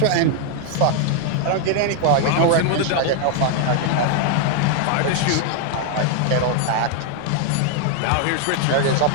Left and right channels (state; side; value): different; both; correlation 0.00